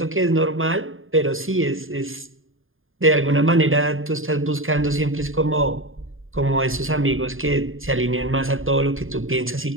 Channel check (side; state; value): left; late; 0.59 ms